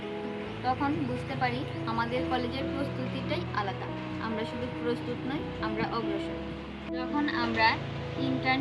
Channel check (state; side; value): identical; both; correlation 1.00